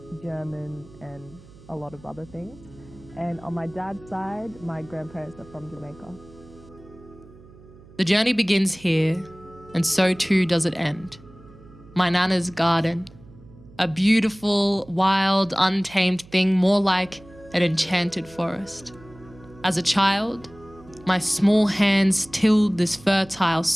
German and a lot of other things. And on my dad's side, my grandparents are from Jamaica. The journey begins here, and so too does it end. My nana's garden, a beautiful, wild, untamed thing, more like an enchanted forest. As a child, my small hands tilled this fertile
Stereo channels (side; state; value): right; noise; hum, 23 dB below the sound